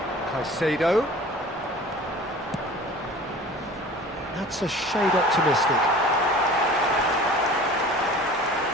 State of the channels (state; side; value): normal; both; correlation 0.43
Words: Caicedo. That's a shade optimistic.